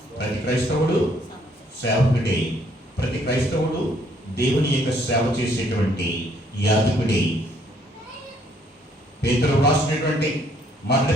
క్రైస్తవుడు సేవకుడే, ప్రతి క్రైస్తవుడు దేవుని యొక్క సేవ చేసేటువంటి యాజకుడే. పేతురు రాసినటువంటి మొదటి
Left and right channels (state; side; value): normal; both; correlation 0.66